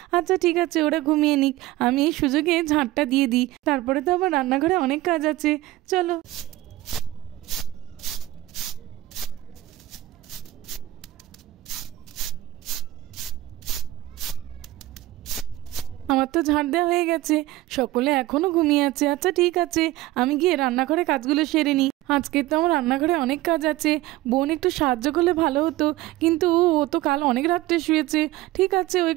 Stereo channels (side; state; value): left; quieter; 16.5 dB